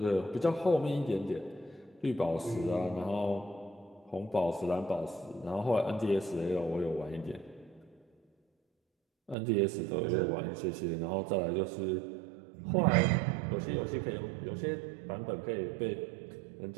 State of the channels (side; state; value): left; drops out; at 9.3 s